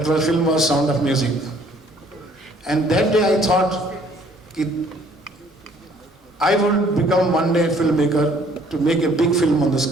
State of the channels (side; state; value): both; normal; correlation 0.60